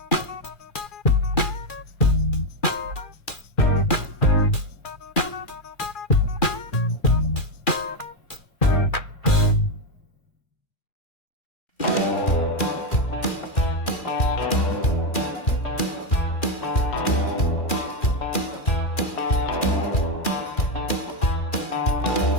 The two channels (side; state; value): right; late; 2.4 ms